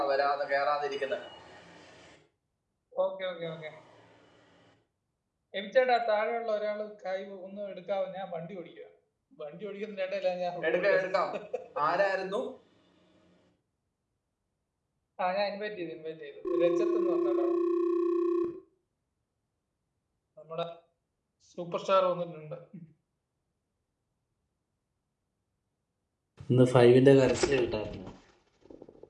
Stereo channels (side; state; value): both; identical; correlation 1.00